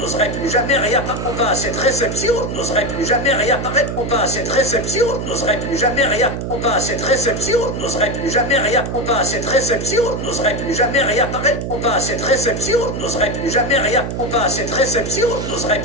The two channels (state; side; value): noise; right; hum, 4 dB below the sound